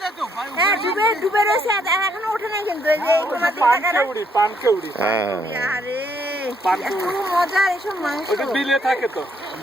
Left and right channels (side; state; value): both; normal; correlation 0.70